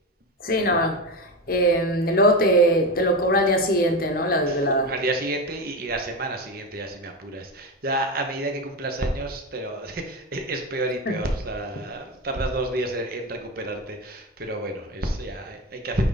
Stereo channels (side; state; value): both; normal; correlation 0.19